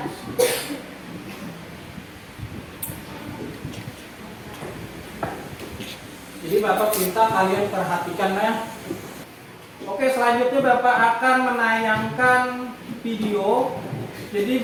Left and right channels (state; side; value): identical; both; correlation 1.00